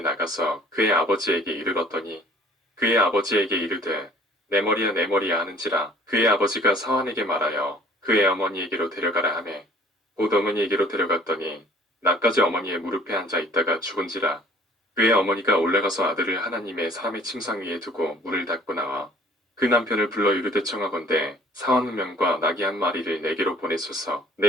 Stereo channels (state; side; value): normal; both; correlation 0.54